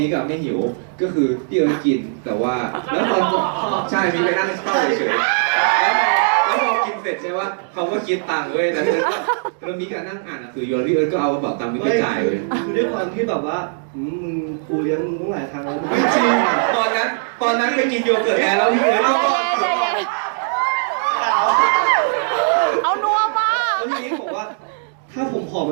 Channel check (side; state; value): left; silent; digital silence